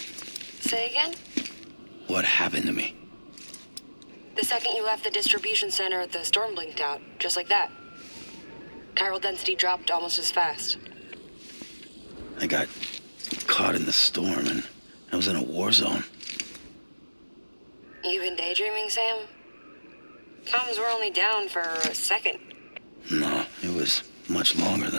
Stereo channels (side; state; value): both; inverted; correlation -1.00